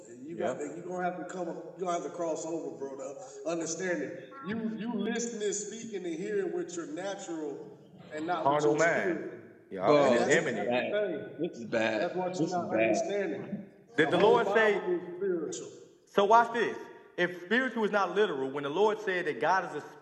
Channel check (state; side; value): identical; both; correlation 1.00